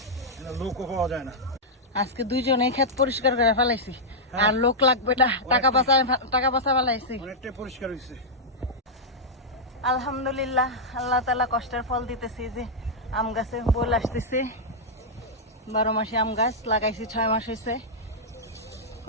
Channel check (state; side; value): normal; both; correlation -0.06